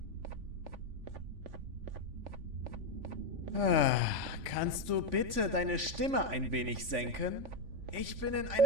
Kannst du bitte deine Stimme ein wenig senken? Ich bin in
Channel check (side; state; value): left; late; 3.5 ms